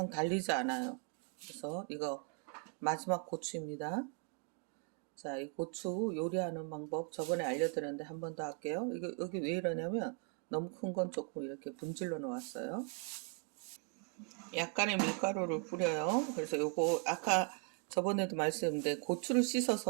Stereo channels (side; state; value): left; quieter; 36.8 dB